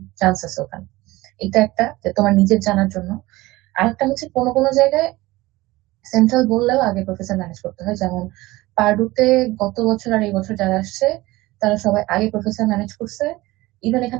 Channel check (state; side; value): quieter; left; 19.4 dB